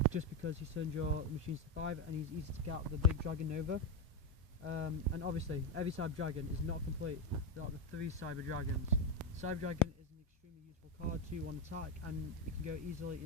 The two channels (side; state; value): both; normal; correlation 0.08